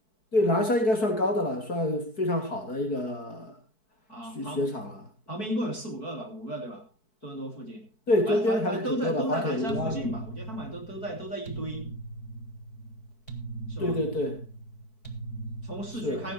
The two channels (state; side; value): late; right; 4.6 ms